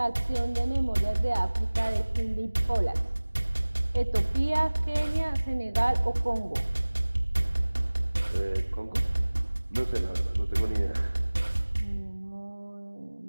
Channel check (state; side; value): inverted; both; correlation -1.00